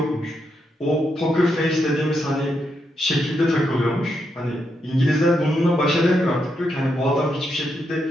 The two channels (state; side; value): normal; both; correlation 0.81